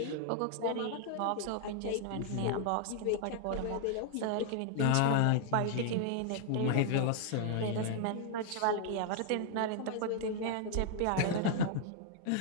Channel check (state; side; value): different; both; correlation 0.00